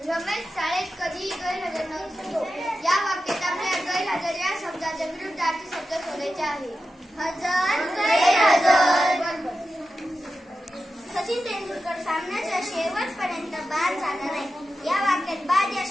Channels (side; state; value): both; normal; correlation 0.91